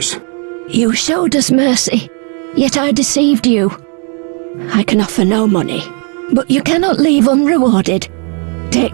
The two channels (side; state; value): left; quieter; 38.5 dB